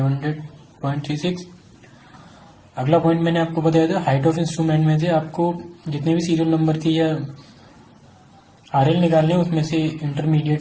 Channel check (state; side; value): identical; both; correlation 1.00